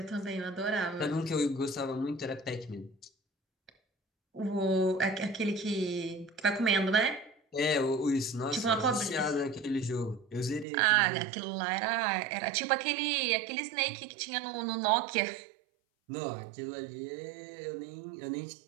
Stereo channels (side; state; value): left; drops out; at 10.7 s